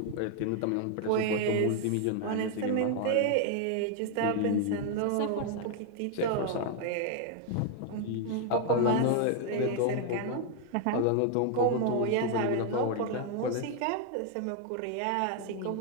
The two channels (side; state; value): both; different; correlation 0.00